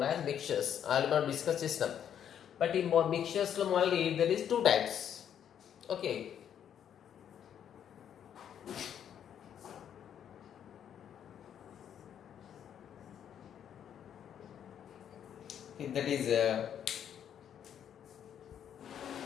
as mixtures. I will not discuss this now. But in mixtures only there is two types. Okay. That is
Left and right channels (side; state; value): right; quieter; 9.2 dB